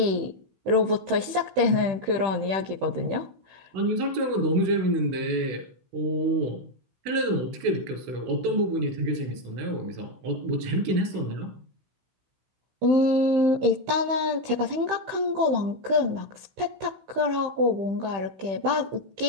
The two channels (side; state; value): left; late; 15 ms